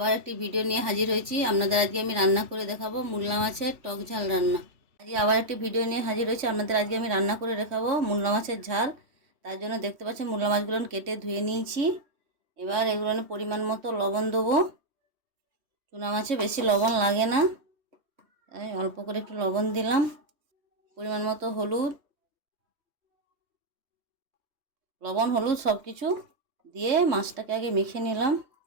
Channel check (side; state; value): left; late; 3.1 ms